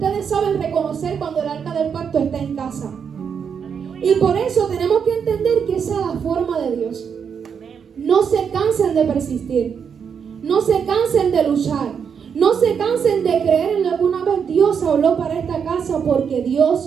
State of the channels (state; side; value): quieter; left; 7.0 dB